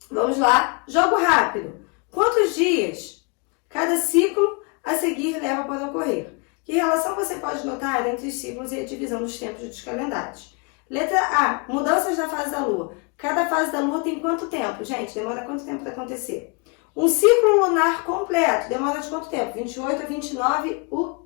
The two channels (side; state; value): right; quieter; 33.1 dB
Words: Vamos lá, jogo rápido. Quantos dias cada ciclo a seguir leva para ocorrer? Que relação você pode notar entre os ciclos e a divisão dos tempos dos calendários? Letra A, mudanças da fase da Lua. Cada fase da Lua tem quanto tempo? Gente, demora quanto tempo para acontecer? Um ciclo lunar completo demora de quanto tempo? 28 a 29, o